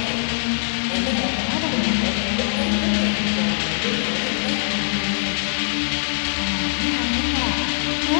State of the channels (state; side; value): silent; right; digital silence